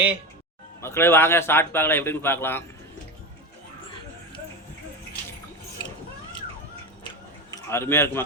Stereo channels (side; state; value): both; normal; correlation 0.21